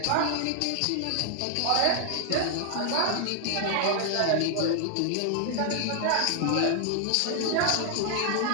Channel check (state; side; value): different; both; correlation 0.00